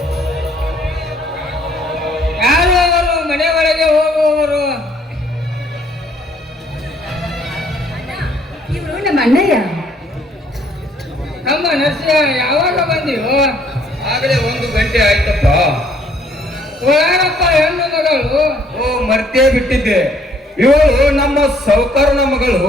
ಯಾರು ಅವರು ಮನೆ ಒಳಗೆ ಹೋಗುವವರು? ಇವರು ನಮ್ಮ ಅಣ್ಣಯ್ಯ. ನಮ್ಮ ನರಸಿಂಹ ಯಾವಾಗ ಬಂದಿವು? ಆಗಲೇ 1 ಗಂಟೆ ಆಯ್ತಪ್ಪ. ಯಾರಪ್ಪ ಹೆಣ್ಣು ಮಗಳು? ಓ, ಮರ್ತೇ ಬಿಟ್ಟಿದ್ದೆ. ಇವಳು ನಮ್ಮ ಸೌಕರ್ನ ಮಗಳು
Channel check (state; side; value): normal; both; correlation 0.63